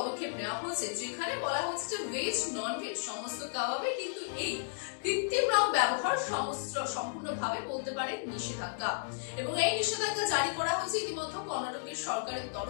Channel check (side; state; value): right; silent; digital silence